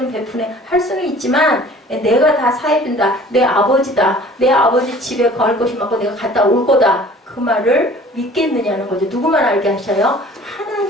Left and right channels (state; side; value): normal; both; correlation 0.49